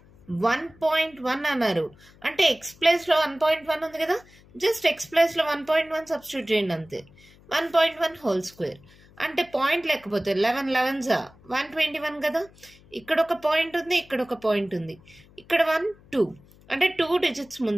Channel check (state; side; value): noise; left; hum, 26 dB below the sound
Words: 1.1 అన్నారు అంటే ఎక్స్ ప్లేస్లో 1.1 ఉంది కదా, జస్ట్ ఎక్స్ ప్లేస్లో 1.1 సబ్స్టిట్యూట్ చేయండి అంతే. 1.1 హోల్ స్క్వేర్ అంటే పాయింట్ లేకపోతే 11 11 121 కదా. ఇక్కడ ఒక పాయింట్ ఉంది, ఇక్కడ ఒక పాయింట్ ఉంది, ఇక్కడ 1 2 అంటే 2 డిజిట్స్